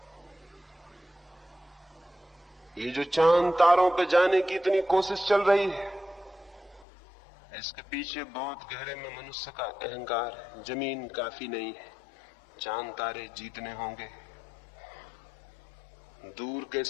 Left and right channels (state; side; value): drops out; right; at 6.9 s